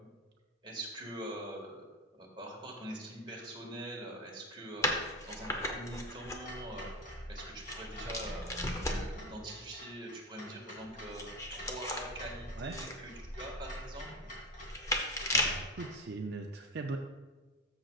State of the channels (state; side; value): normal; both; correlation 0.18